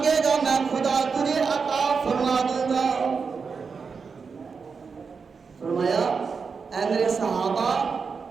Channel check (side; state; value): left; quieter; 5.4 dB